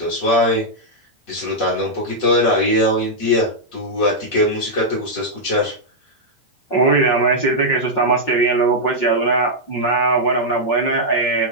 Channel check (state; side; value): late; right; 5.6 ms